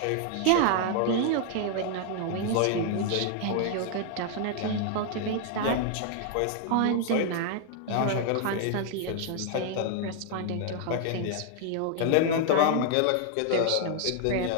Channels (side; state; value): both; different; correlation 0.00